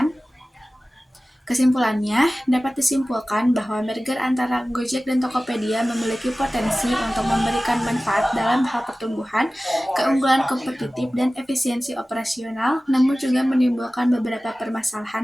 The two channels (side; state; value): both; normal; correlation 0.97